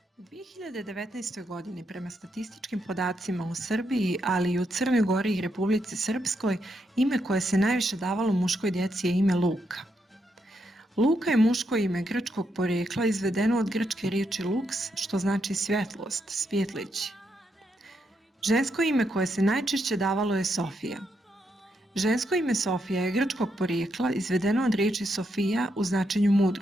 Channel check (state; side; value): normal; both; correlation 0.80